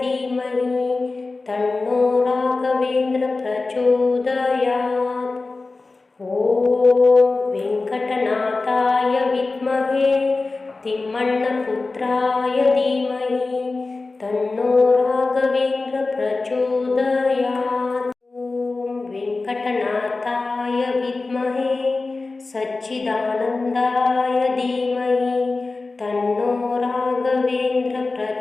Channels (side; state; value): right; quieter; 3.6 dB